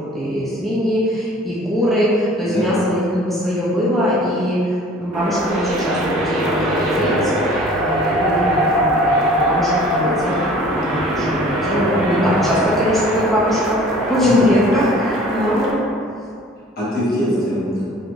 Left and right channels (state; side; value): normal; both; correlation 0.48